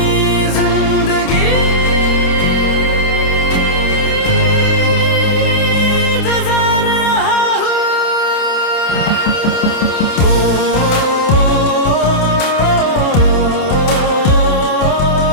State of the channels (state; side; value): late; right; 28 ms